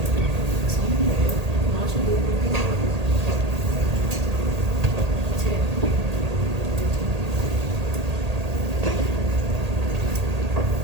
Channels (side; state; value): left; late; 1.8 ms